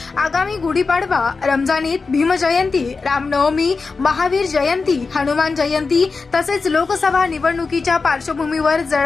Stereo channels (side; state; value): right; quieter; 4.4 dB